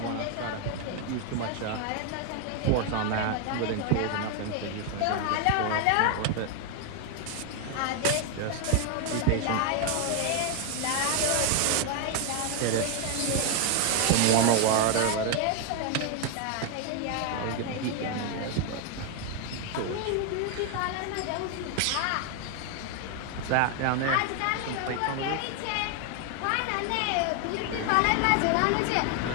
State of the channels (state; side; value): different; both; correlation 0.01